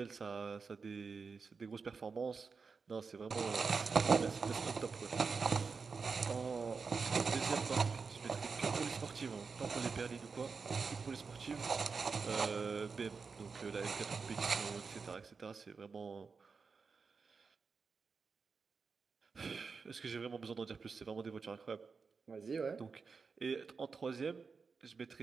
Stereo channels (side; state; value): left; quieter; 5.0 dB